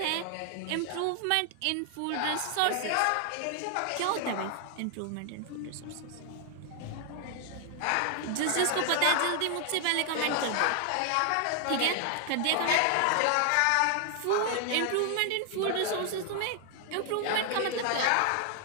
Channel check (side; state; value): both; different; correlation 0.00